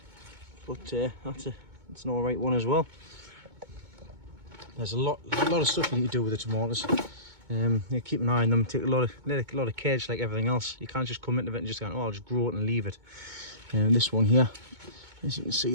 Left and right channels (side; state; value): left; late; 2.2 ms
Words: But that's an alright one as well. There's a lot of stuff you need to do with the tomatoes. You keep an eye on them, take a lot of care, just like everything else. You can't just come into it and just go, oh, I'll just grow it and leave it. This one here, as you can